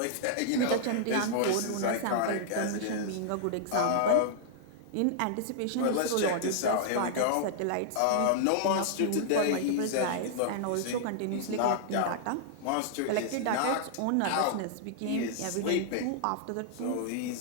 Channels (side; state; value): both; different; correlation -0.01